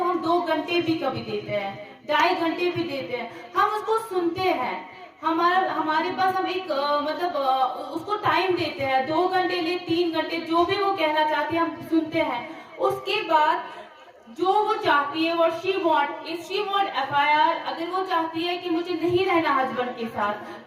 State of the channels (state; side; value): identical; both; correlation 1.00